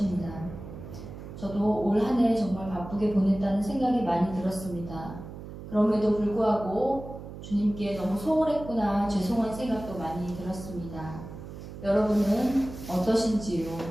저도 올 한 해 정말 바쁘게 보냈다는 생각이 많이 들었습니다. 그럼에도 불구하고 주님께 너무 소홀했구나 죄송한 생각도 많이 들었습니다. 여러분은 어떠신지요?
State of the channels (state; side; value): noise; right; hum, 12 dB below the sound